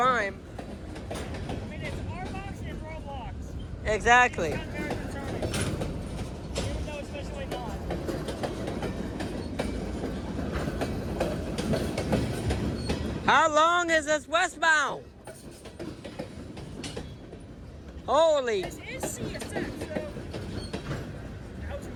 I mean, it's R box and Roblox. Exactly. It's very concerning. Even though it's especially not. How long is this westbound? Holy. This is CSX, so how's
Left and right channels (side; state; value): both; identical; correlation 1.00